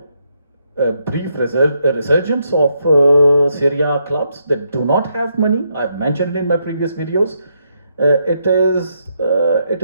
a brief resurgence of Serie A clubs that do not have money. I've mentioned in my previous videos. It is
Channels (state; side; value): inverted; both; correlation -0.78